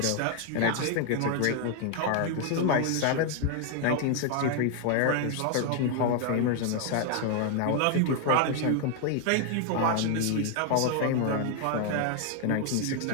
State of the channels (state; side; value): different; both; correlation 0.00